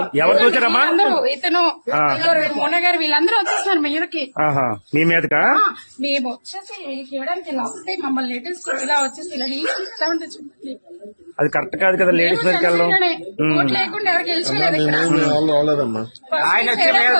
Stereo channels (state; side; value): inverted; both; correlation -1.00